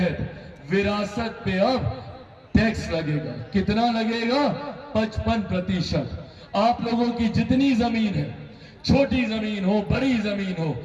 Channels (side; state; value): both; identical; correlation 1.00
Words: विरासत पे अब टैक्स लगेगा। कितना लगेगा? 55%। आप लोगों की जितनी जमीन है, छोटी जमीन हो, बड़ी जमीन हो,